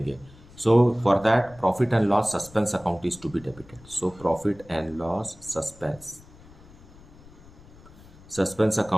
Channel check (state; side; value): noise; left; rumble, 22 dB below the sound